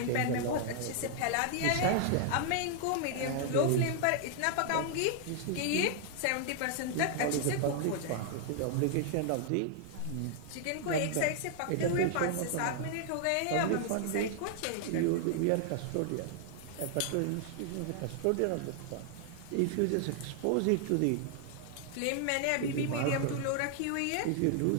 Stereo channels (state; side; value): different; both; correlation 0.00